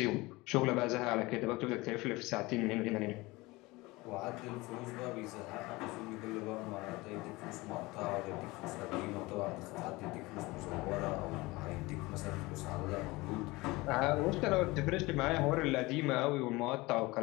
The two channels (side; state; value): right; quieter; 22.0 dB